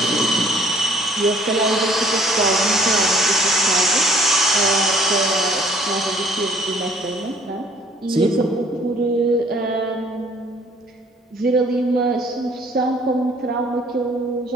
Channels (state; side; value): normal; both; correlation 0.58